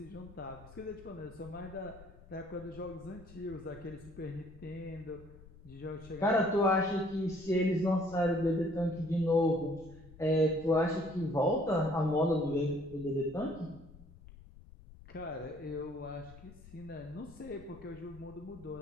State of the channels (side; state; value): left; noise; rumble, 19 dB below the sound